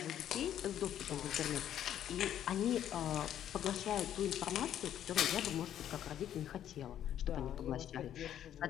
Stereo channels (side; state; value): right; quieter; 10.7 dB